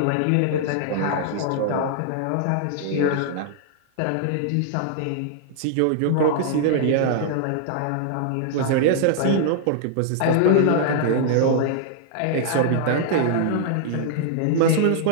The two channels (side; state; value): both; different; correlation -0.01